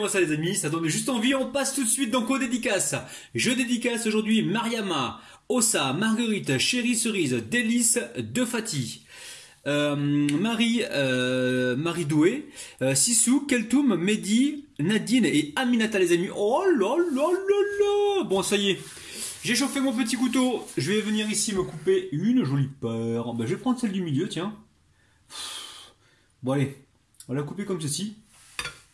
ça les amis, ça donne juste envie, on passe tout de suite donc aux dédicaces. Je dédicace aujourd'hui Mariama, Ossa, Marguerite, Chérie Cerise, Délice, De Fati, Marie Doué, Sissou, Keltoum, Mehdi, Nadine et Aminata les amis. Oh là là là là. Bon ça y est, j'ai chauffé mon petit couteau, je vais venir ici me couper une jolie paire. Ben, je vais prendre celle du milieu, tiens. Bon allez, on va la couper comme ceci.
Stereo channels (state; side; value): identical; both; correlation 1.00